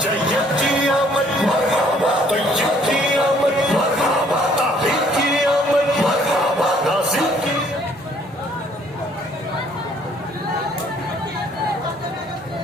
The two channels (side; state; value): both; normal; correlation 0.61